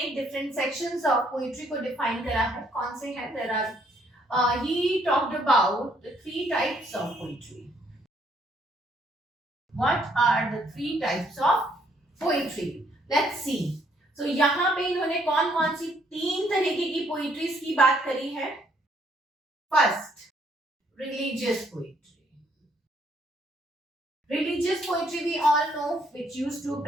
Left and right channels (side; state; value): both; normal; correlation 0.68